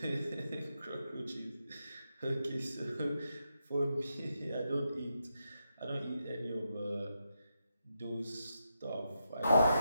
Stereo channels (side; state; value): both; inverted; correlation -0.85